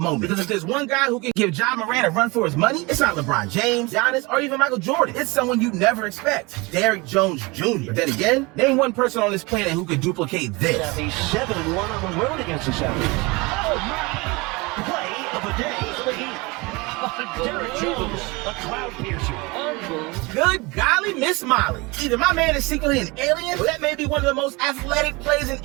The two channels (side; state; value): left; quieter; 25.3 dB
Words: moment. Because if there's one guy who can give Ja Morant a run for his money, it's not LeBron James, Giannis, or even Michael Jordan. It's someone you never expect. Derrick Jones Jr. But then again, name one person on this planet who could duplicate this. He's 7-1 on the road against the Celtics. Oh, my play of the day for the Heat. Derrick Jones, a cloud piercer. Good golly, Miss Molly. Either my man is secretly an alien, or that may be one of the most athletic plays in